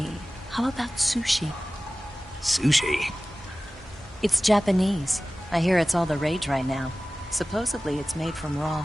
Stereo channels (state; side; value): normal; both; correlation 0.97